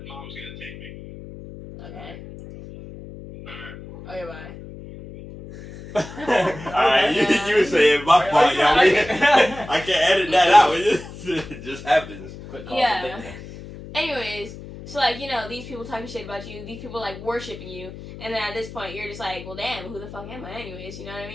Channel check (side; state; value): left; noise; hum, 14 dB below the sound